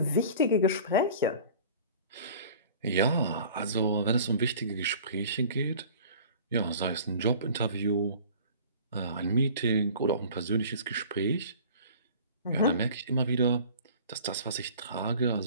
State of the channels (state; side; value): inverted; both; correlation -0.44